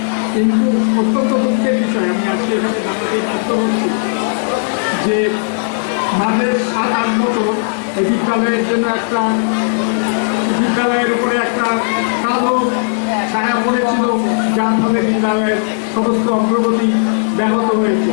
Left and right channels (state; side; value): silent; right; digital silence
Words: কিন্তু অত্যন্ত দুঃখের বিষয় আমি আজকে এখানে জানাতে বাধ্য হচ্ছি যে মাঝে 7-8 বছর এই বিদ্যালয়ের জন্য একটা বিদ্যালয়ের উপরে একটা কালো ছায়া পড়েছিল, যার ফলে বিদ্যালয়ের সমস্ত অগ্রগতি ব্যাহত হয়েছে।